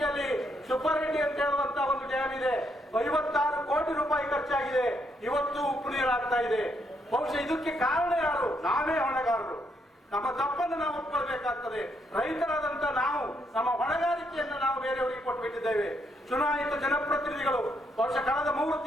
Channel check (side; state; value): both; normal; correlation 0.75